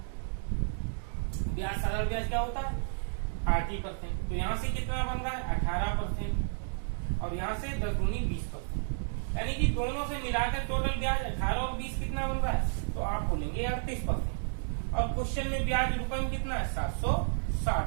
ब्याज साधारण ब्याज क्या होता है? 80%। तो यहाँ से कितना बन रहा है? 18%, और यहाँ से 10 दूनी 20%, यानी कि दोनों से मिलाकर टोटल ब्याज 18 और 20 कितना बन रहा है? तो आप बोलेंगे 38%। और क्वेश्चन में ब्याज रुपए में कितना है? 760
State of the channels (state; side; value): silent; left; digital silence